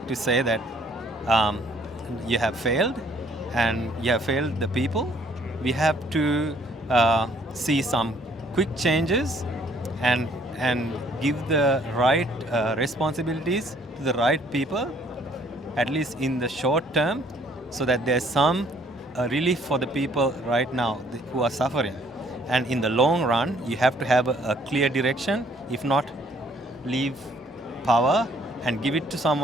to say that you have failed and you have failed the people. We have to see some quick changes and give the right responsibilities to the right people, at least in the short term, so that there's some relief for the people right now who are suffering. And in the long run, you have to have a clear direction. If not, leave power and give it to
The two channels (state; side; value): normal; both; correlation 0.62